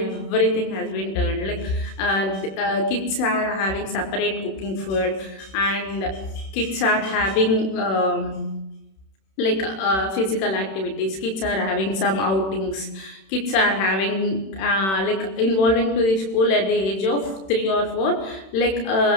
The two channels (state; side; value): late; right; 31 ms